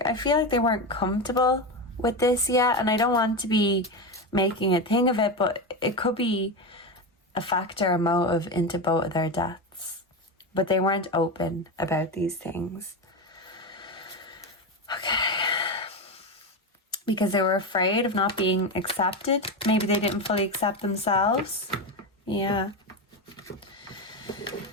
I feel like they weren't comfortable with this yet, and I don't want to be making a thing of it, but it could be a factor, a motive into both of their deaths. But they weren't open about these things. Okay. Because they were afraid of not being accepted. Maybe they didn't fully accept themselves. Yeah.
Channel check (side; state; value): both; normal; correlation 0.17